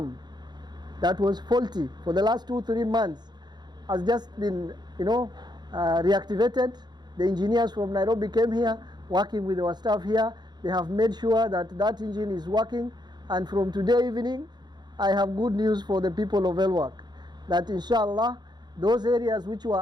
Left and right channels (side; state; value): left; late; 0.21 ms